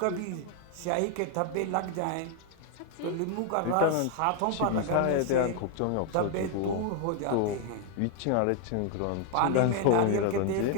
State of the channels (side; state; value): both; different; correlation 0.01